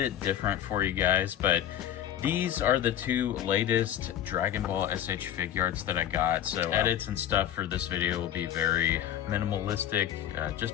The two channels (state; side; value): quieter; right; 10.8 dB